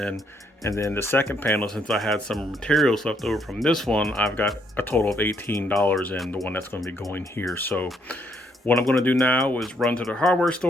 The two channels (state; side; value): normal; both; correlation 0.72